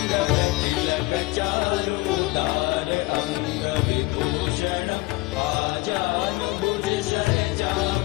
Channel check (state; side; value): quieter; right; 22.2 dB